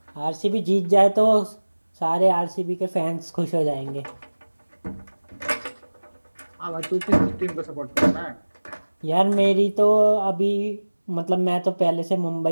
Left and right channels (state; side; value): inverted; both; correlation -1.00